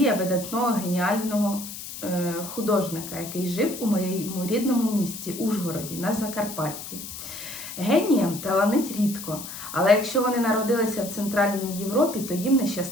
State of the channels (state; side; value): noise; left; hiss, 10 dB below the sound